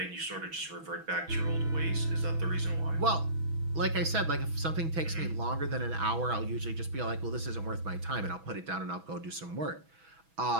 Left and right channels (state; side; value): late; left; 6.1 ms